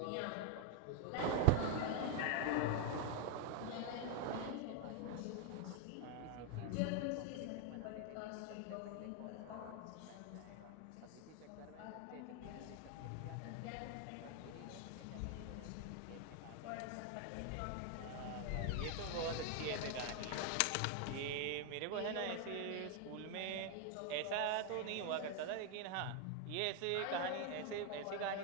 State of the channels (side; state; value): both; different; correlation 0.00